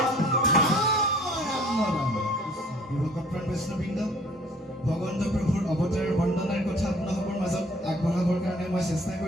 বৈষ্ণববৃন্দ ভগৱন্ত প্ৰভুৰ অৱতাৰৰ বন্দনাৰ কথা আপোনালোকৰ মাজত আগবঢ়াবৰ কাৰণে মই চেষ্টা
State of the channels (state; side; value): normal; both; correlation 0.54